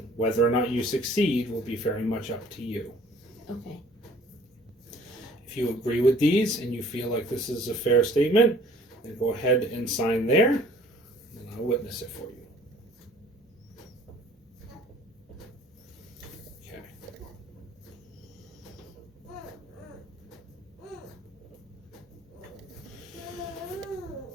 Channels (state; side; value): normal; both; correlation 0.54